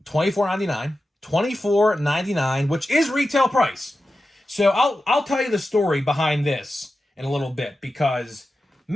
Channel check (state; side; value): normal; both; correlation 0.92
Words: $24.99. $24.99, which is retail price. So I'll tell you the story behind this in a little bit because,